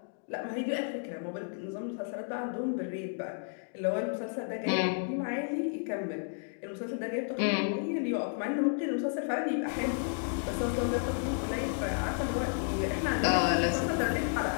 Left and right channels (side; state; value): right; silent; digital silence